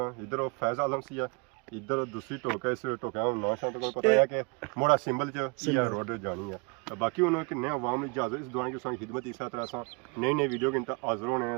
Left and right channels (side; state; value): left; quieter; 32.2 dB